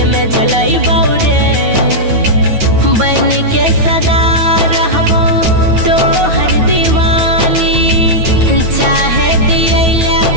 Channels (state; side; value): late; left; 9.4 ms